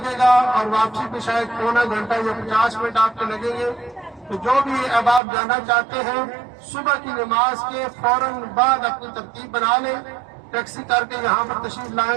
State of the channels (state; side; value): drops out; left; at 5.2 s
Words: گا، اور واپسی پہ شاید پونا گھنٹہ یا 50 منٹ آپ کے لگیں گے۔ تو جو بھی اب آپ جانا چاہتے ہیں، صبح کی نماز کے فوراً بعد اپنی ترتیب بنا لیں، ٹیکسی کر کے یہاں پر تشریف